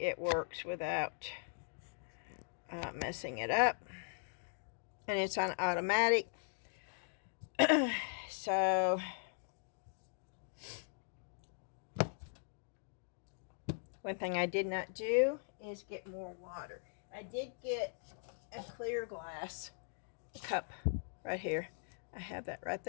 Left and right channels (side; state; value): right; silent; digital silence